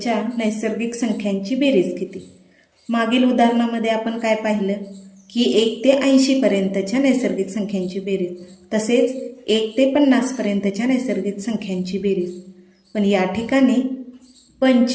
नैसर्गिक संख्यांची बेरीज किती? मागील उदाहरणामध्ये आपण काय पाहिलं की 1 ते 80 पर्यंतच्या नैसर्गिक संख्यांची बेरीज, तसेच 1 ते 50 पर्यंतच्या नैसर्गिक संख्यांची बेरीज. पण या ठिकाणी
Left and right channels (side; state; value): both; identical; correlation 1.00